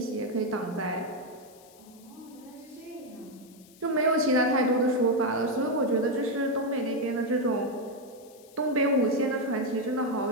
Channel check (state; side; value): noise; left; hiss, 25 dB below the sound